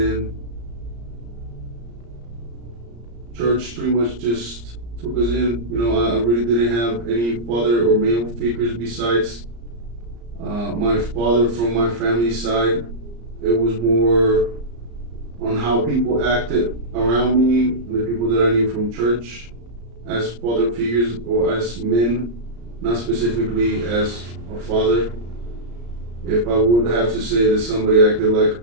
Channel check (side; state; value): left; late; 34 ms